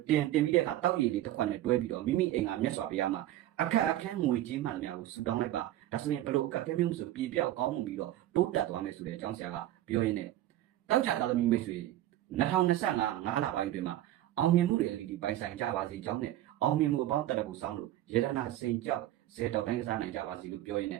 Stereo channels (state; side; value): quieter; left; 14.0 dB